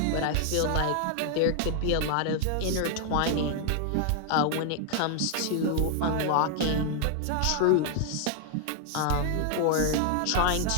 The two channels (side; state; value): both; different; correlation 0.00